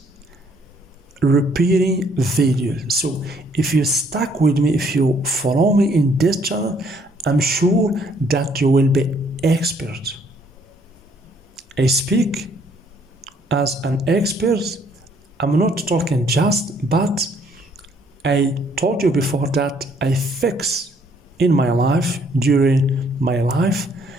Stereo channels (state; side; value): normal; both; correlation 0.65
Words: repairing videos. So if you stuck with me, if you follow me in this channel, I'm sure that you will be expert. I speak as an expert. I'm not talking just, but I told you before that I fix in my life, during my life,